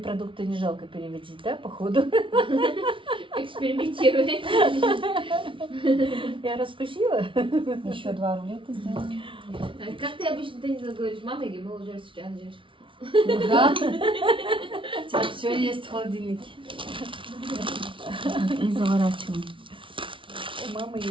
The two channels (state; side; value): late; left; 0.25 ms